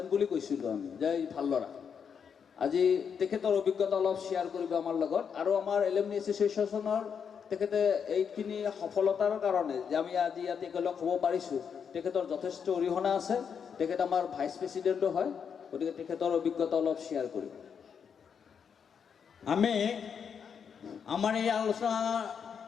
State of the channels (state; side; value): quieter; right; 7.0 dB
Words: বুলি কৈছিলোঁ আমি, যে ভাল ল'ৰা। আজি তেখেতৰ অভিজ্ঞতা অলপ শ্বেয়াৰ কৰিব আমাৰ লগত, আৰু আমাৰ এলুমনি এছ'চিয়েশ্যনৰ তেখেতে এইখিনি সফলতাৰ কাৰণে যে আমি আজি ইয়াত একেলগ হ'ব পাৰিছোঁ, তেখেতৰ যথেষ্ট অৰিহণা আছে। তেখেত আমাৰ ভাইচ প্ৰেছিডেণ্টো হয়, গতিকে তেখেতৰ অভিজ্ঞতা অলপ শ্বেয়াৰ কৰিব। আমি আমাৰ এই আলোচনা